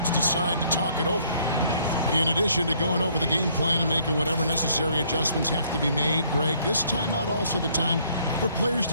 decide to talk it over. In addition to going over the game plan and making whatever necessary adjustments have to be made, Greg, this timeout also the time for players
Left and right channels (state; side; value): inverted; both; correlation -0.64